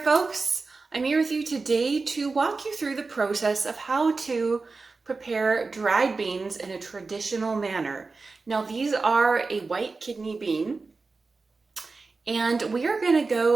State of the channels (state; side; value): quieter; left; 4.0 dB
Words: I'm here with you today to walk you through the process of how to prepare dried beans in a traditional manner. Now, these are a white kidney bean, and we are going to